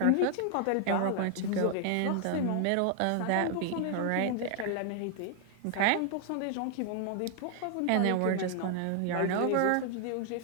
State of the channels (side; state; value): both; different; correlation 0.00